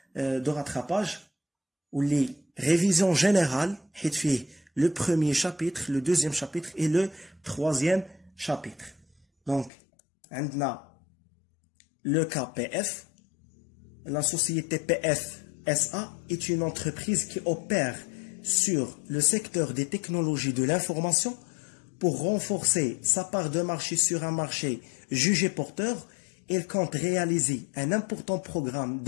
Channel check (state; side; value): drops out; right; at 9.7 s